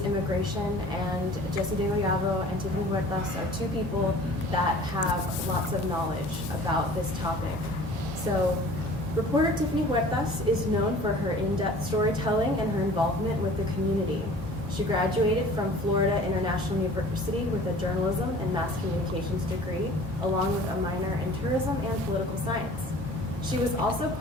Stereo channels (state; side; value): normal; both; correlation 0.47